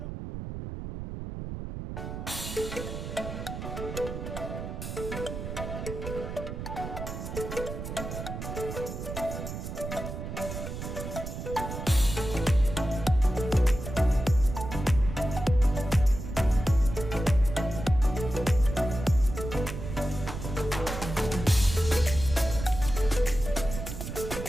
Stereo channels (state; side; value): noise; right; rumble, 7 dB below the sound